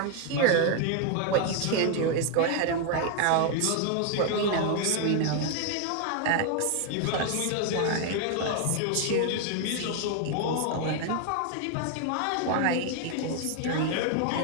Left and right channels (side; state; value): both; different; correlation 0.01